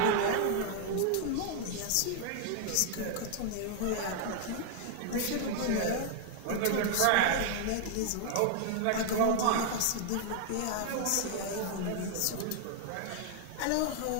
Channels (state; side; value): different; both; correlation 0.00